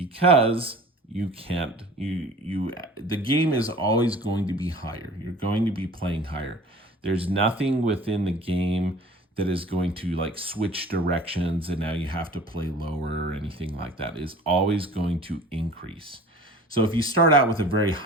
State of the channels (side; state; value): both; normal; correlation 0.44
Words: you can't, the game is always going to be higher. You're going to be playing higher. There's nothing within the game that is going to like switch directions and now you have to play lower or anything like that. It is always going to increase. So if you start out with a very